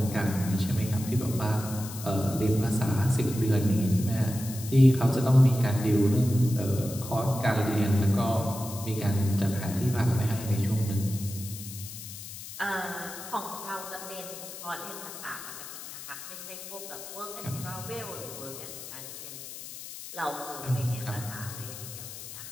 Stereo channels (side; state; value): left; noise; hiss, 11 dB below the sound